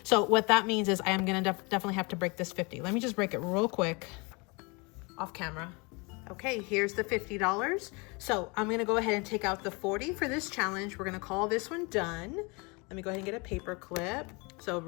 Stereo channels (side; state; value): right; quieter; 28.9 dB